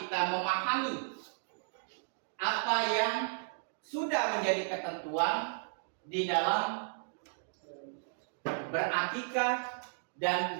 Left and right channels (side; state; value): left; silent; digital silence